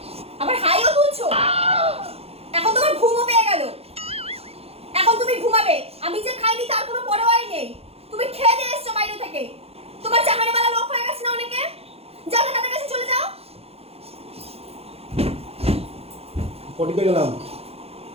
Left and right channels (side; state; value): left; late; 0.29 ms